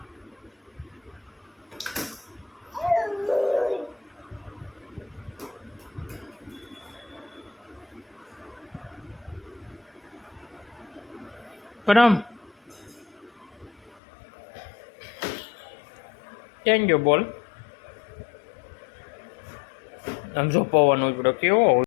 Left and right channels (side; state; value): right; drops out; at 14.0 s